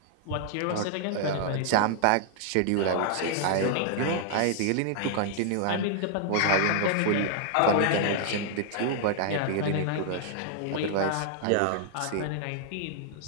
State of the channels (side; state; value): both; different; correlation -0.01